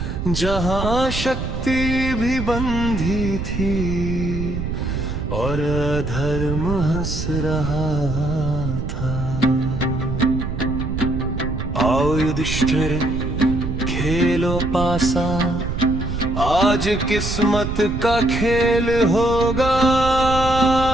जहाँ शक्ति भी बंधी थी, और अधर्म हंस रहा था। आओ युधिष्ठिर खेलो पासा, आज किस्मत का खेल होगा।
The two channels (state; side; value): noise; right; rumble, 5 dB below the sound